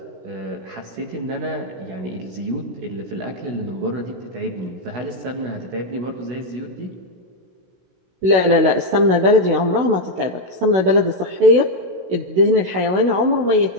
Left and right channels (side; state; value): left; late; 16 ms